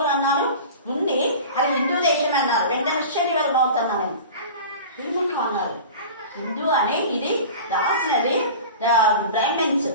అన్నారు ఉంది, అది హిందూ దేశమే అన్నారు. వెంటనే శరీరం అవుతున్నా నేను ఎందుకు అన్నారు, హిందూ అని ఇది రాసినది బ్రాహ్మణ్స్,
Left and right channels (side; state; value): both; inverted; correlation -0.36